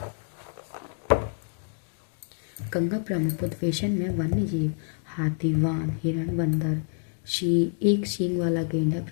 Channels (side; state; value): right; silent; digital silence